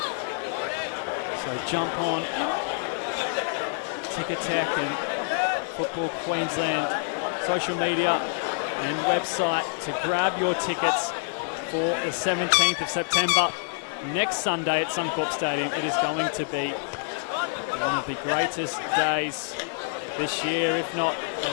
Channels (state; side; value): silent; right; digital silence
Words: So jump on Ticketek and Football Queensland social media and website to grab your tickets for the 17th of September, next Sunday at Suncorp Stadium. It is going to be one of the greatest days this year, if not